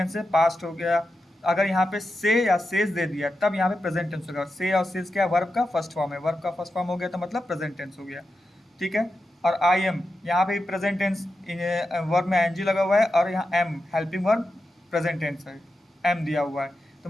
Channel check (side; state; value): both; normal; correlation 0.89